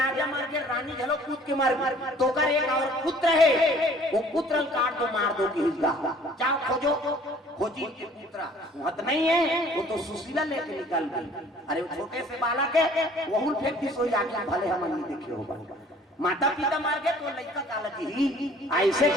मर गए रानी झलो कूद के मर गई तो कर एक और पुत्र है वो पुत्र काट दो मार दो की हिस्सा जाओ खोजो खोजी के पुत्र मत नहीं है वो तो सुशीला लेके निकल गई अरे वो छोटे से बालक है वहुल फेंक दी सोई आके भले हम नहीं देखे होगा माता पिता मार गए तो लड़का काला ही ऐसे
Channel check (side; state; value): both; normal; correlation 0.54